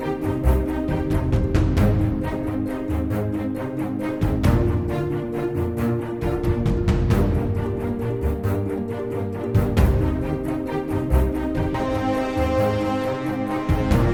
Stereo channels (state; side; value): identical; both; correlation 1.00